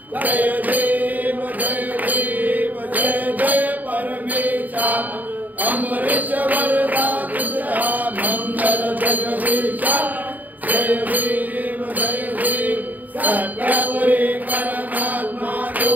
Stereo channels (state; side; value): late; left; 0.081 ms